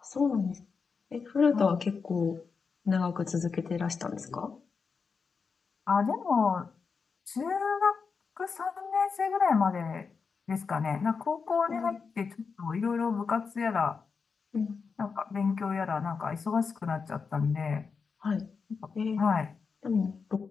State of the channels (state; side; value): quieter; right; 5.3 dB